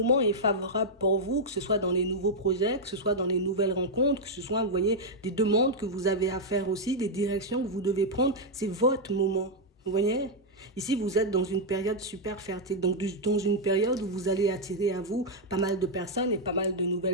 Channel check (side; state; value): both; normal; correlation -0.02